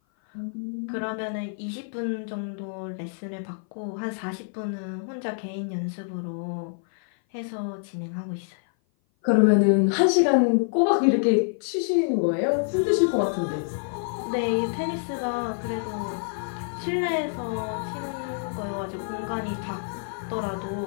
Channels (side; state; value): right; silent; 56 dB below the other